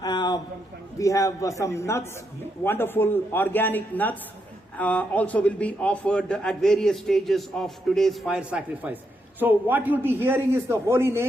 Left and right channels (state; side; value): normal; both; correlation 0.81